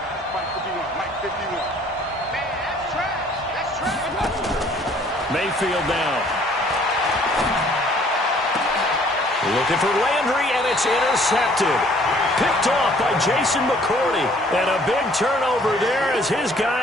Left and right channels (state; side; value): normal; both; correlation 0.58